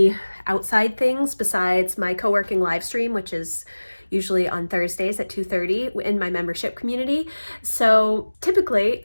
outside things besides my co-working live stream, which is usually on Thursdays at 2:30 in my membership community. So typically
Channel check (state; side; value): inverted; both; correlation -1.00